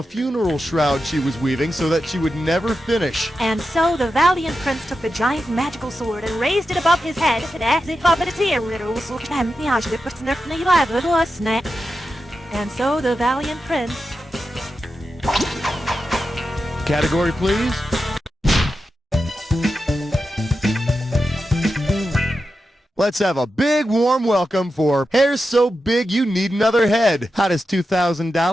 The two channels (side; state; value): both; normal; correlation 0.90